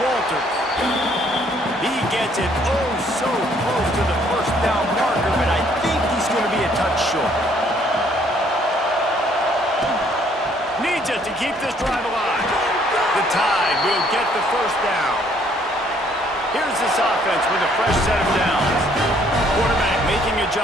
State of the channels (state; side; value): normal; both; correlation 0.64